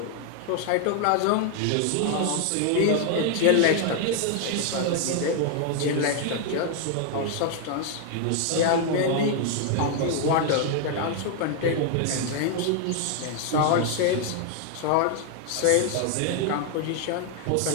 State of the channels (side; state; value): both; different; correlation 0.00